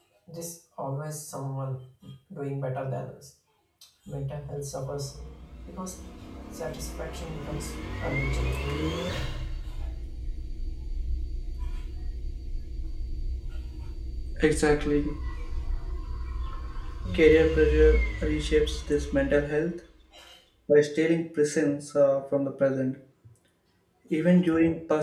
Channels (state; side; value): identical; both; correlation 1.00